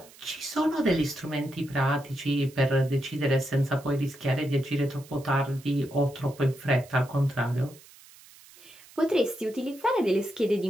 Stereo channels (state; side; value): noise; right; hiss, 23 dB below the sound